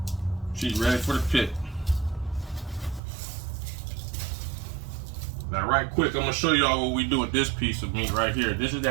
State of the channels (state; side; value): drops out; left; at 3.0 s